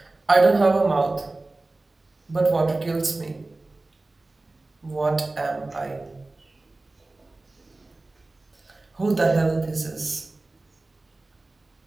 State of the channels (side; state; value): left; quieter; 3.1 dB